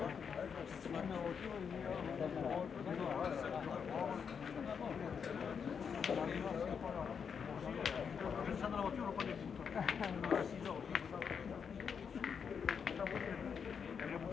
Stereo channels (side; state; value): right; quieter; 6.7 dB